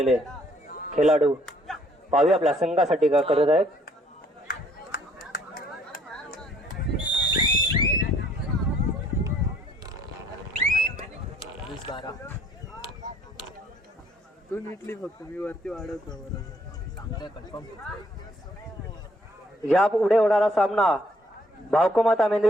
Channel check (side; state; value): both; normal; correlation 0.63